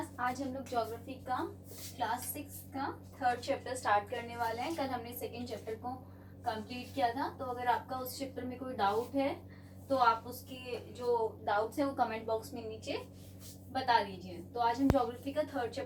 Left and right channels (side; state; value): both; identical; correlation 1.00